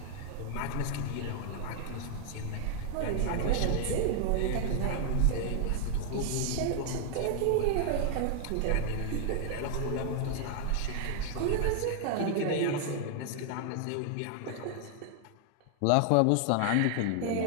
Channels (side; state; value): both; different; correlation 0.00